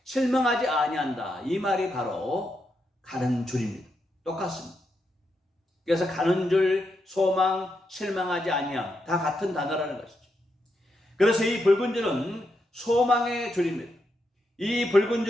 실망하지 아니한다. 이 말이 바로 가는 줄입니다. 똑같습니다. 그래서 가는 줄, 소망, 실망하지 아니함 다 같은 단어라는 것이죠. 그래서 이 붉은 줄은 소망의 줄입니다. 이 붉은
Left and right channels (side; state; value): both; normal; correlation 0.83